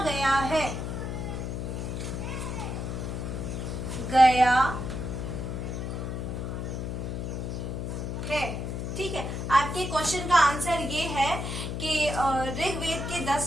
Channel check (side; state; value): left; noise; hum, 4 dB below the sound